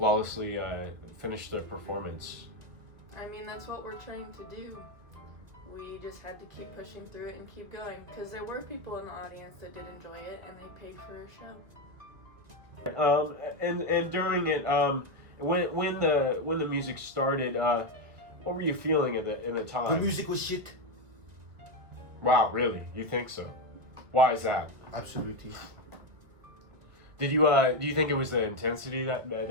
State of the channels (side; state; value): left; late; 2.1 ms